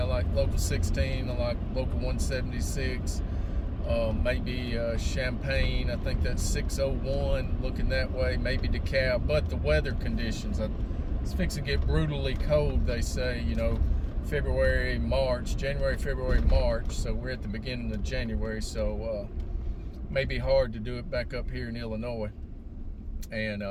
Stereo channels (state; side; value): identical; both; correlation 1.00